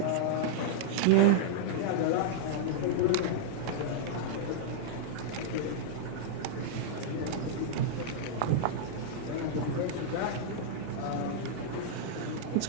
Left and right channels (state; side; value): different; both; correlation -0.02